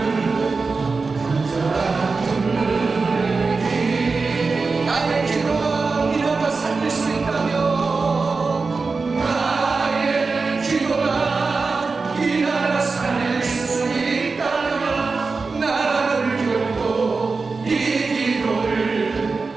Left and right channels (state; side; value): quieter; left; 4.3 dB